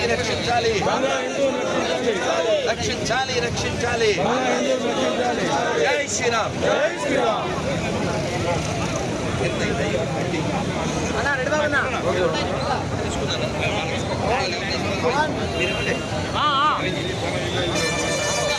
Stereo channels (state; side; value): identical; both; correlation 1.00